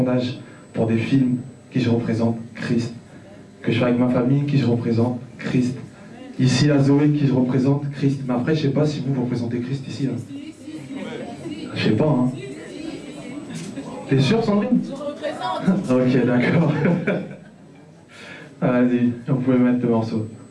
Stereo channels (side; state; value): both; identical; correlation 1.00